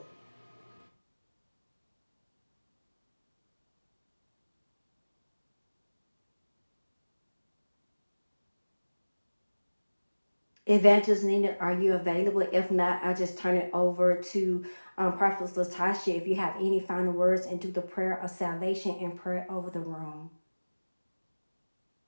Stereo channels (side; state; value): both; inverted; correlation -1.00